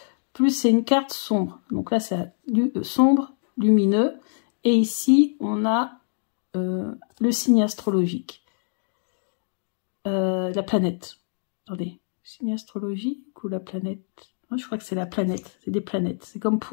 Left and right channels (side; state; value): right; silent; digital silence